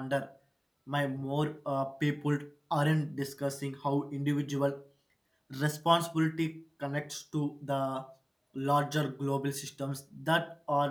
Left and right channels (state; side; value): identical; both; correlation 1.00